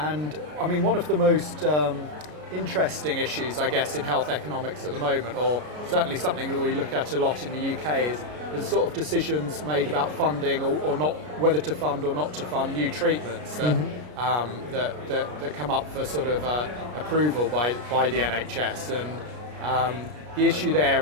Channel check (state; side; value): late; left; 33 ms